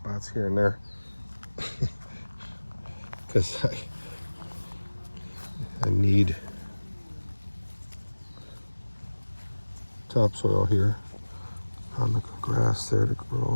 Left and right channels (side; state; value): both; inverted; correlation -1.00